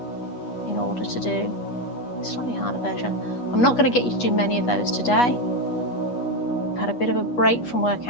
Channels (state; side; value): late; right; 8.3 ms